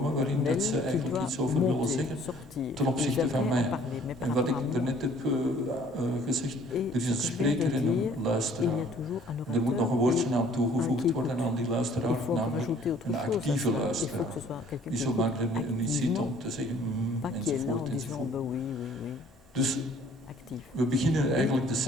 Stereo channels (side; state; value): both; normal; correlation 0.57